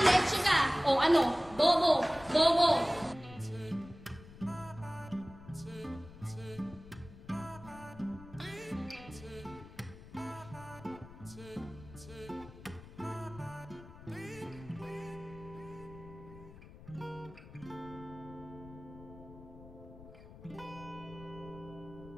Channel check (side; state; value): left; noise; rumble, 17 dB below the sound